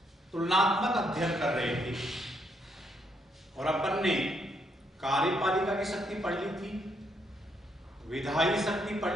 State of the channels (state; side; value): normal; both; correlation 0.75